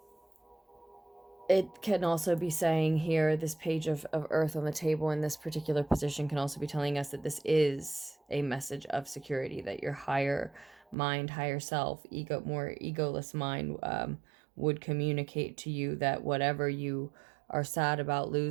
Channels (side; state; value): left; drops out; at 11.0 s